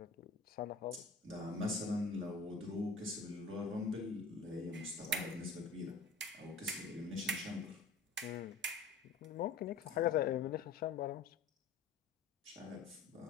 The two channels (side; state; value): right; quieter; 4.4 dB